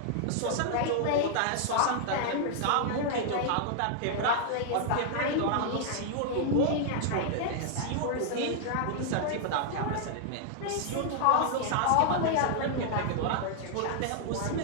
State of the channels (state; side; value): different; both; correlation -0.01